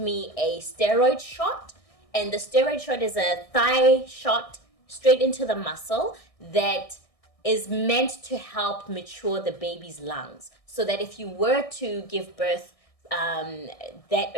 a steroid shot. And the steroid shot is a thigh shot straight into the muscle that is meant to help mature the baby's lungs. So that if you were to give birth that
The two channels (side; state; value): right; late; 1.6 ms